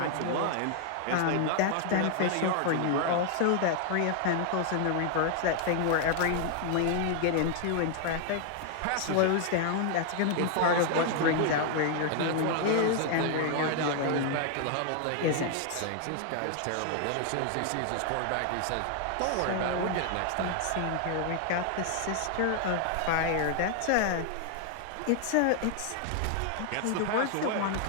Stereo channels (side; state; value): both; different; correlation 0.00